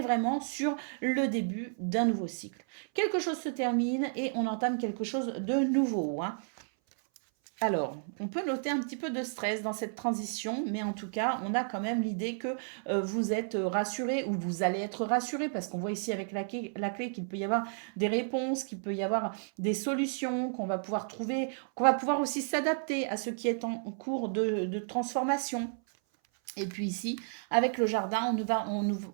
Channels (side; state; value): left; silent; 56 dB below the other